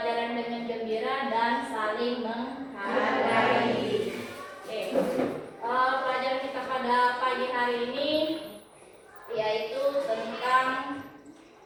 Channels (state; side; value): identical; both; correlation 1.00